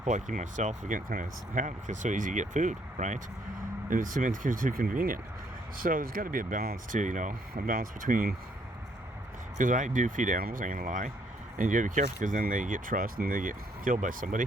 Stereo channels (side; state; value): both; normal; correlation 0.68